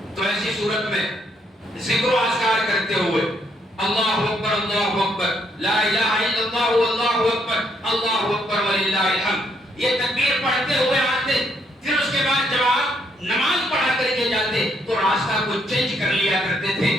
تو ایسی صورت میں ذکر و اذکار کرتے ہوئے اللہ اکبر لا الہ الا اللہ واللہ اکبر اللہ اکبر وللہ الحمد یہ تکبیر پڑھتے ہوئے آتے. پھر اس کے بعد جب آپ نماز پڑھا کر کے جاتے تو راستہ کو چینج کر لیا کرتے تھے،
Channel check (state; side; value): normal; both; correlation 0.72